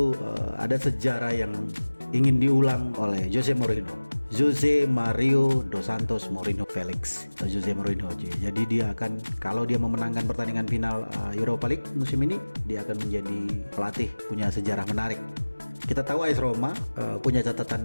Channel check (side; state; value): both; inverted; correlation -1.00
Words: ada sejarah yang ingin diulang oleh Jose Mourinho, Jose Mario dos Santos Mourinho Felix atau Jose Mourinho. Jadi dia akan, kalau dia memenangkan pertandingan final Europa League musim ini, dia akan menjadi pelatih punya sejarah menarik. Kita tahu AS Roma punya